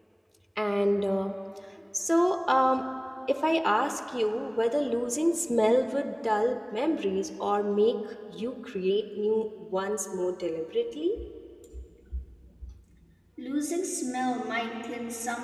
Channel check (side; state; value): both; identical; correlation 1.00